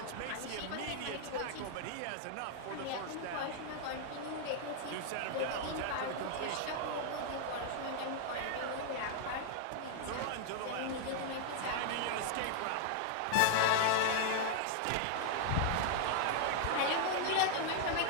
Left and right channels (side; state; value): both; different; correlation 0.00